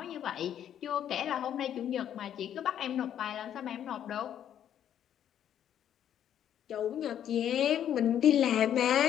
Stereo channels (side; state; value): right; quieter; 10.0 dB